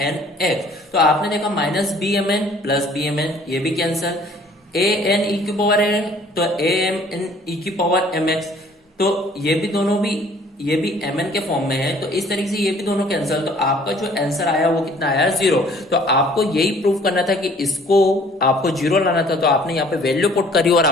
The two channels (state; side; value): normal; both; correlation 0.55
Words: x. तो आपने देखा minus B M N plus B M N, ये भी कैंसल। ए एन ई की पावर है तो ए एम एन ई की पावर एम एक्स, तो ये भी दोनों भी, ये भी एम एन के फॉर्म में है, तो इस तरीके से ये भी दोनों कैंसल। तो आपका जो आंसर आया वो कितना आया, 0। तो आपको यही प्रूव करना था कि इसको आपको 0 लाना था, तो आपने यहाँ पे वैल्यू पुट करी और